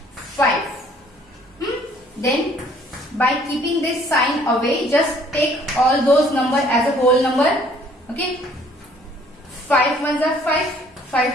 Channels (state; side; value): normal; both; correlation 0.59